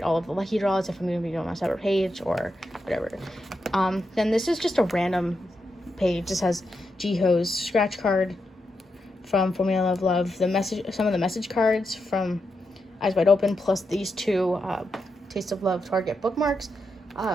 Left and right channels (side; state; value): both; normal; correlation 0.85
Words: all of the lucky draws, if I'm going to be doing a separate page or whatever. Then this is just a random page. This has Jihyo's scratch card from Formula of Love, some of the message cards from Eyes Wide Open, plus these two Taste of Love Target bookmarks.